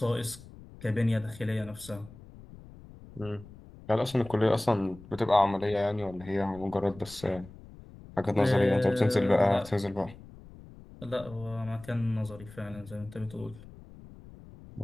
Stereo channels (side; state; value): left; noise; rumble, 19 dB below the sound